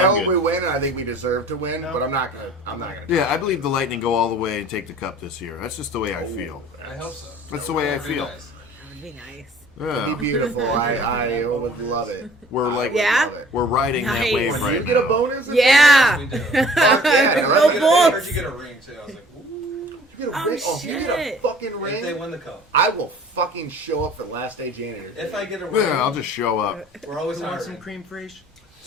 I'm hope we good. win, and I think we deserve to win. No. But I'm not gonna. I'm not gonna. Yeah, I believe the Lightning go all the way and take the cup this year. That's just the way I feel. I hope so. That's the way I Very feel. nice. That'd be nice. It'd be Yeah, beautiful. I would love it. we're like Yeah? Love it. we're riding that Nice. wave When right you get a now. bonus, Yeah. We do. Fuck yeah, No let's I balls. heard you get a ring, too. I was like, ooh. You get a Oh, ring. Oh, you get a shit. fucking If they ring. win the cup. I will fucking show up for last day janitor. If I get a ring, Yeah, I'll just show up. we're always You want hiring. some cream fraiche?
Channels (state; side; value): normal; both; correlation 0.50